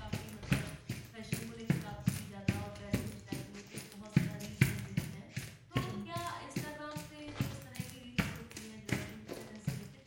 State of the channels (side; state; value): both; identical; correlation 1.00